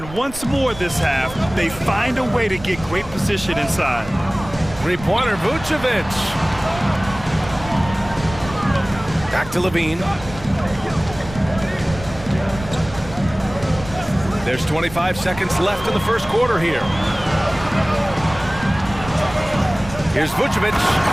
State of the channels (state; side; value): noise; right; rumble, 14 dB below the sound